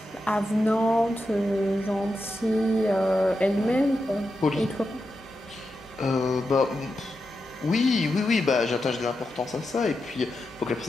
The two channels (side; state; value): right; noise; hum, 25 dB below the sound